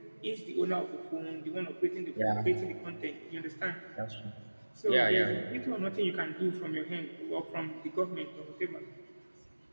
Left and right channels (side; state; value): both; inverted; correlation -1.00